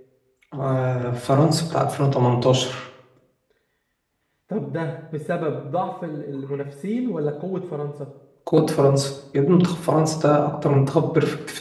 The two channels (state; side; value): identical; both; correlation 1.00